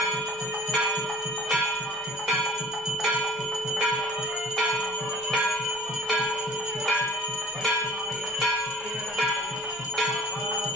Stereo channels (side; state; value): left; noise; rumble, 29 dB below the sound